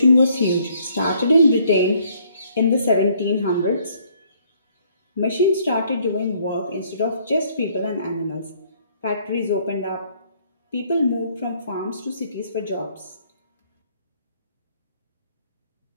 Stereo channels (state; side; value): inverted; both; correlation -0.64